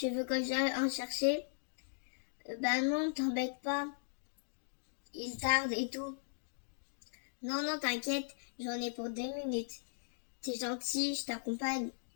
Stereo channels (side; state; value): right; silent; digital silence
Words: veux que j'aille en chercher? Ben non, t'embête pas. Il tarde et tout. Non, non, t'inquiète, j'en ai pour 2 minutes. T'es gentil, je t'accompagne.